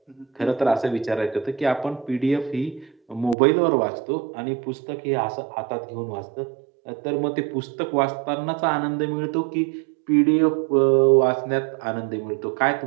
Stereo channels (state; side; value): drops out; left; at 3.4 s